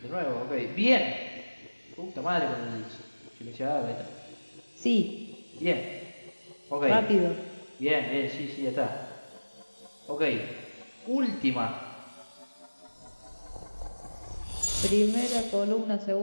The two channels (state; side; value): inverted; both; correlation -1.00